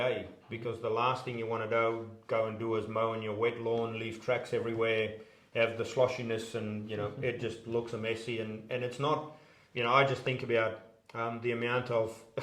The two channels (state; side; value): identical; both; correlation 1.00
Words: because the last thing you want to go and do is mow in your wet lawn, leave tracks everywhere, have the sloshiness, and it just looks messy, and it's not. I just think about the amount of